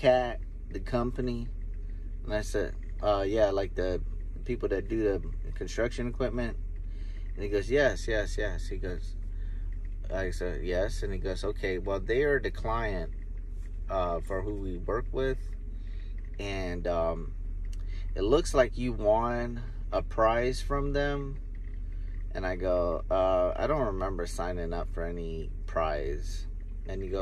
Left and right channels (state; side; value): identical; both; correlation 1.00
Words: the company? And I said, yeah, like the people that do the construction equipment. And he goes, yes. He goes, I said, yes. And he goes, okay, well, they are the client for who we work with. And it looks like you won a prize from them. And I go, I don't remember signing up for any prize. And he